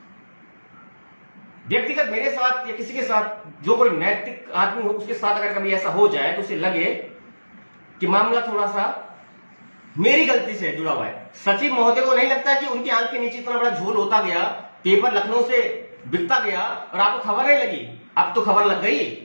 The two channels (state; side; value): inverted; both; correlation -1.00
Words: व्यक्तिगत मेरे साथ या किसी के साथ जो कोई नैतिक आदमी हो, उसके साथ अगर कभी ऐसा हो जाए तो उसे लगे कि मामला थोड़ा सा मेरी गलती से जुड़ा हुआ है। सचिव महोदय को नहीं लगता कि उनकी आंख के नीचे इतना बड़ा झोल होता गया, पेपर लखनऊ से बिकता गया और आपको खबर नहीं लगी। अब तो खबर लग गई,